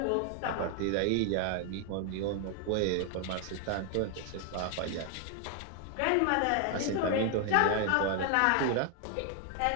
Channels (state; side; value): different; both; correlation 0.00